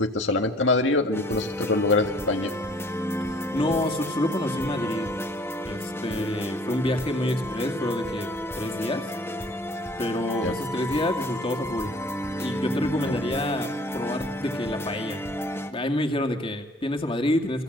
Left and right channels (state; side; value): normal; both; correlation 0.54